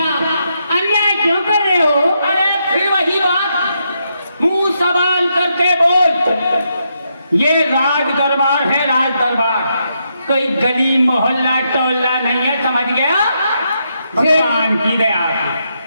क्यों कर रहे हो? अरे फिर वही बात, मुंह सवाल करके बोल। ये राज दरबार है, राज दरबार, कोई गली मोहल्ला टोला नहीं है, समझ गया? भगवान की दया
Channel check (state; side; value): inverted; both; correlation -0.80